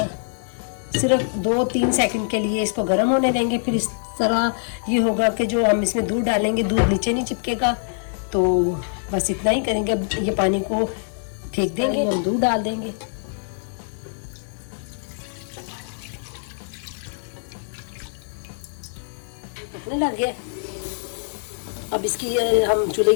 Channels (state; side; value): silent; right; 63 dB below the other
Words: सिर्फ 2-3 सेकंड के लिए इसको गर्म होने देंगे। फिर इस तरह ये होगा कि जो हम इसमें दूध डालेंगे दूध नीचे नहीं चिपकेगा, तो बस इतना ही करेंगे। अब ये पानी को फेंक देंगे, हम दूध डाल देंगे। पकने लग गया। अब इसकी हम चूल्हे